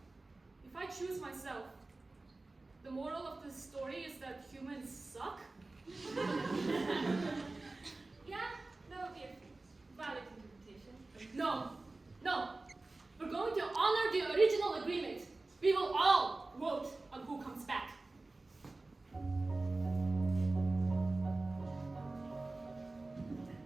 If I choose myself, the moral of the story is that humans suck? Yeah, that would be a valid interpretation. No. We're going to honor the original agreement. We will all vote on who comes back.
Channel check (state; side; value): quieter; left; 3.2 dB